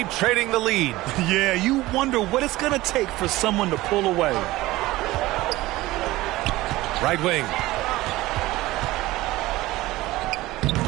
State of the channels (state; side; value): quieter; left; 18.2 dB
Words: trading the lead. Yeah, you wonder what it's going to take for someone to pull away. Right wing.